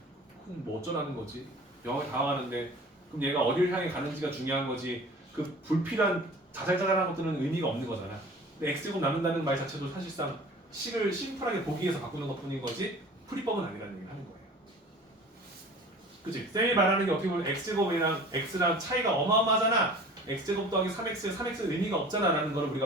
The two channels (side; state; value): both; normal; correlation 0.43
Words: 그럼 뭐 어쩌라는 거지? 0을 다가가는데 그럼 얘가 어디를 향해 가는지가 중요한 거지 그 불필요한 자잘자잘한 것들은 의미가 없는 거잖아. 근데 x제곱 나눈다는 말 자체도 사실상 식을 심플하게 보기 위해서 바꾸는 것 뿐인 거지 풀이법은 아니라는 얘기를 하는 거예요. 그치? 쌤이 말하는 게 어떻게 보면 x제곱이랑 x랑 차이가 어마어마하잖아. x제곱 더하기 3x, 3x는 의미가 없잖아 라는 걸